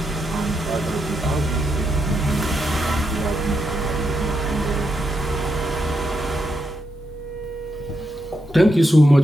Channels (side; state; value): both; normal; correlation 0.82